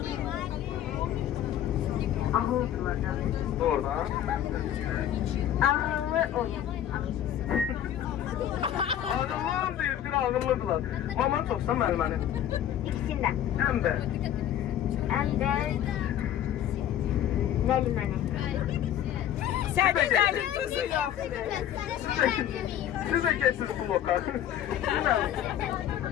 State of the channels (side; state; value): right; quieter; 10.9 dB